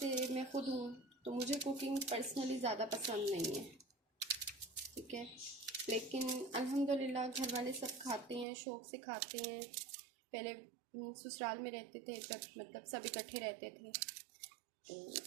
मैं ख़ुद हूँ तो मुझे कुकिंग पर्सनली ज़्यादा पसंद नहीं है, ठीक है, लेकिन अल्हम्दुलिल्लाह घर वाले सब खाते हैं, शौक़ से खाते हैं। पहले ससुराल में रहते थे जब मतलब सब इकट्ठे रहते थे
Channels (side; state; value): left; drops out; at 8.5 s